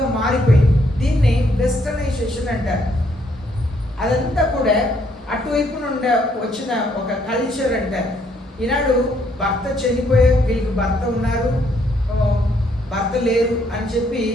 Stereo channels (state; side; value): normal; both; correlation 0.70